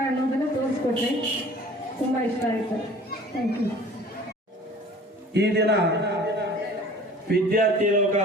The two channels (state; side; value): normal; both; correlation 0.47